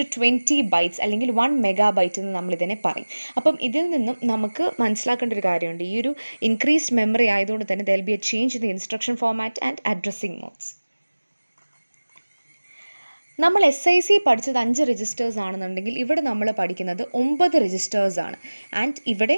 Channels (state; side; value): inverted; both; correlation -1.00